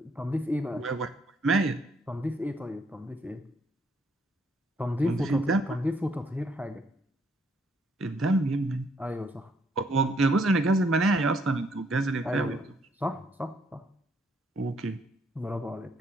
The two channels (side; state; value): both; normal; correlation 0.69